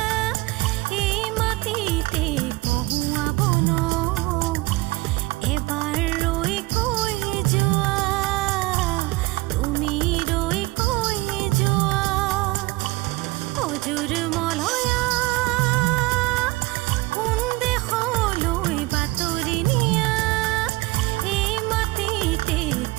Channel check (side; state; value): left; quieter; 21.3 dB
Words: এই মাটিতে কহুৱাব ন এবাৰ ৰৈ কৈ যোৱা তুমি ৰৈ কৈ যোৱা অজুৰ মলয়া কোন দেশলৈ বাতৰি নিয়া এই মাটিতে